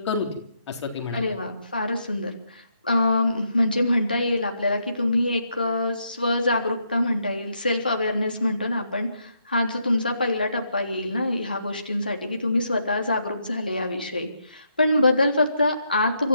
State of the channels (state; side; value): inverted; both; correlation -0.78